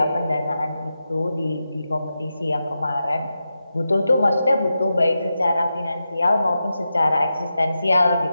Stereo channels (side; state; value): both; inverted; correlation -0.90